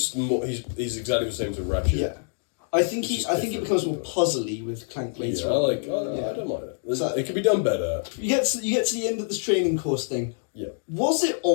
more. He's exactly the same to Ratchet. yeah. I think it becomes more puzzly with Clank later. Yeah, on. I don't mind it. It could be done better. You get to the end of this training course thing. Yeah. Was it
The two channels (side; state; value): right; silent; digital silence